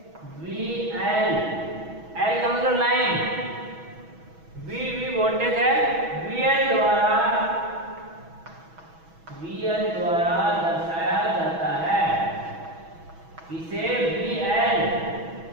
VL, L का मतलब लाइन, V वोल्टेज है, VL द्वारा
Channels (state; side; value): late; left; 6.1 ms